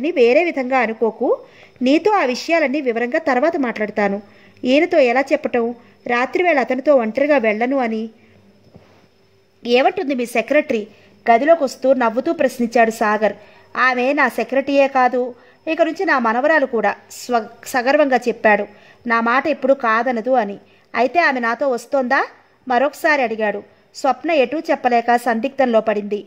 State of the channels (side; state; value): both; identical; correlation 1.00